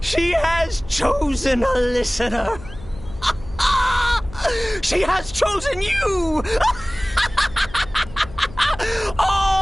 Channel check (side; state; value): left; noise; hum, 17 dB below the sound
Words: She has chosen a listener. She has chosen you!